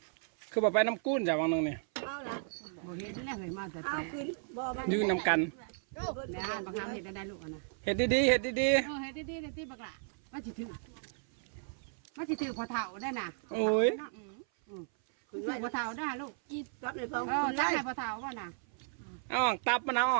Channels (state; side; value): silent; left; 55 dB below the other